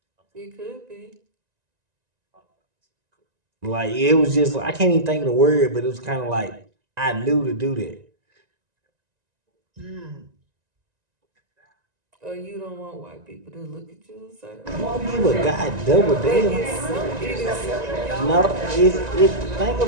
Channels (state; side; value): late; left; 1.9 ms